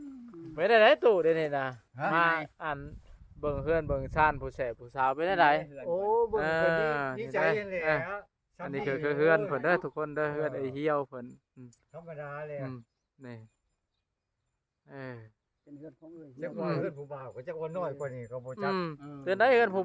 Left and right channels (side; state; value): both; identical; correlation 1.00